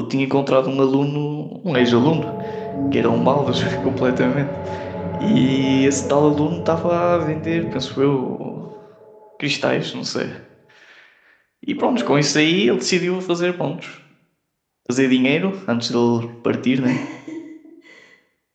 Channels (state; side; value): identical; both; correlation 1.00